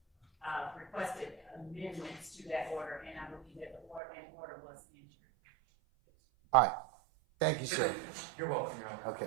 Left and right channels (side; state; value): left; drops out; at 4.0 s